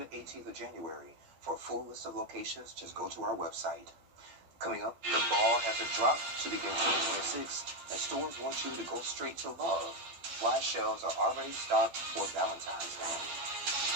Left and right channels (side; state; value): left; late; 12 ms